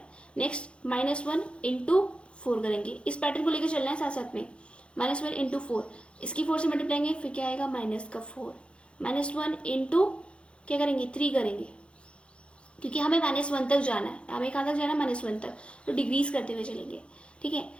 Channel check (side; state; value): right; late; 0.058 ms